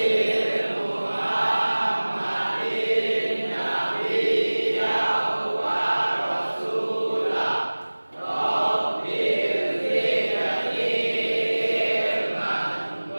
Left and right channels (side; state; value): both; inverted; correlation -1.00